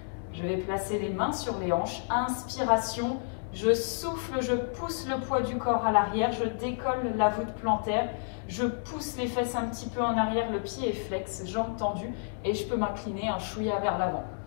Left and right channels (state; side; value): silent; right; 58 dB below the other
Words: Je vais placer les mains sur les hanches. Inspiration. Je souffle, je pousse le poids du corps à l'arrière. Je décolle la voûte plantaire. Je pousse les fesses un petit peu en arrière. Le pied est flex, jambes tendues. Et je peux m'incliner un chouïa vers l'avant.